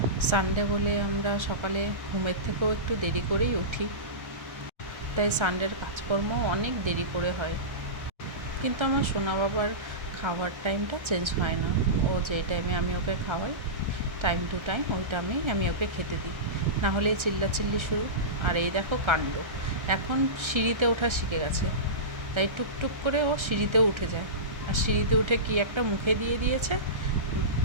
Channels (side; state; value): left; late; 1.3 ms